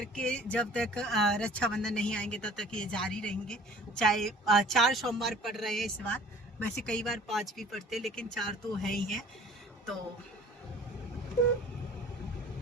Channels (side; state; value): both; normal; correlation 0.49